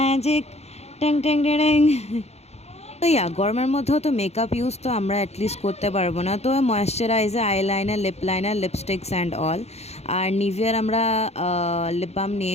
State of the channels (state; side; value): late; right; 0.31 ms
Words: টেং টেং ডেং। তো ইয়া গরমের মধ্যেও তো makeup use তো আমরা অ্যাটলিস্ট করতে পারবো না, তো moisturiser, eyeliner, lip liner, lipsticks and all. আর নিভিয়ার আমরা লিপ বাম